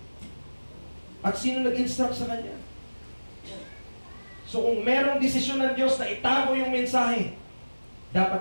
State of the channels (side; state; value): both; inverted; correlation -1.00